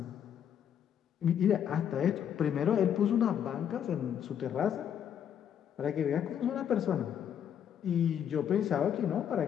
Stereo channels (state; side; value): quieter; right; 9.0 dB